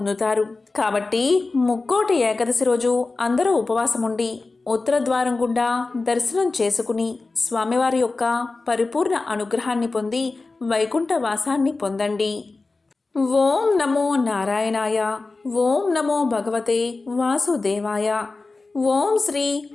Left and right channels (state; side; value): quieter; right; 3.6 dB